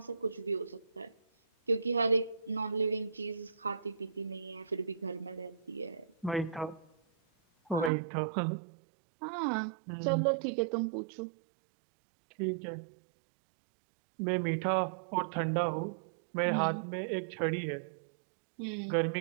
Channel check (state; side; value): drops out; left; at 7.9 s